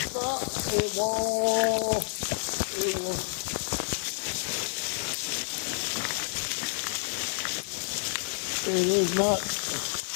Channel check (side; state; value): right; silent; 58 dB below the other